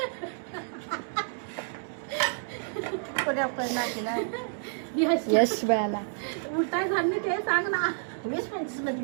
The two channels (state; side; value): silent; left; 58 dB below the other